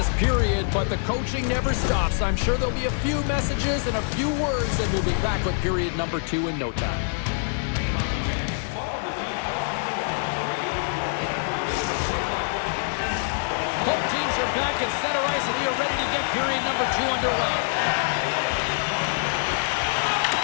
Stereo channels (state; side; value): silent; right; digital silence